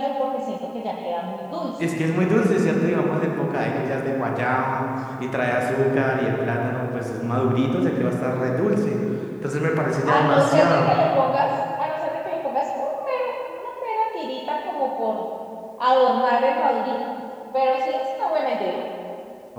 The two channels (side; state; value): both; identical; correlation 1.00